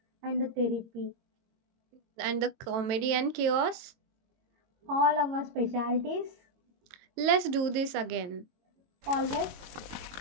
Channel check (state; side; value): late; left; 23 ms